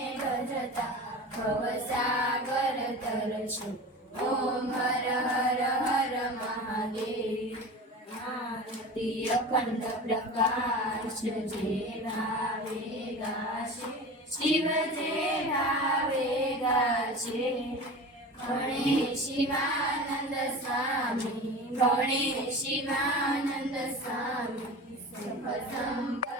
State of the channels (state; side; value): normal; both; correlation 0.32